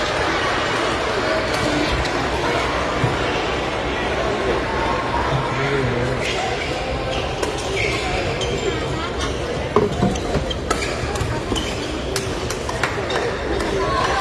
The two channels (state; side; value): identical; both; correlation 1.00